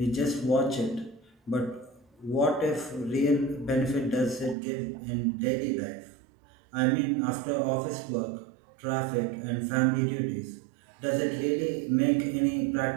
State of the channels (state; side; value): drops out; left; at 4.5 s